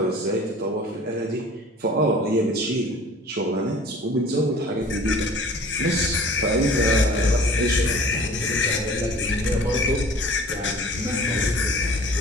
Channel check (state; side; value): normal; both; correlation 0.46